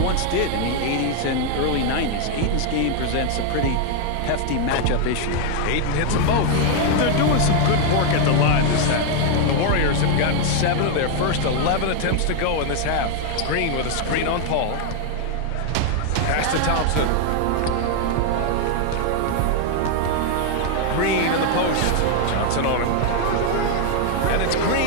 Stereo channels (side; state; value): both; different; correlation 0.00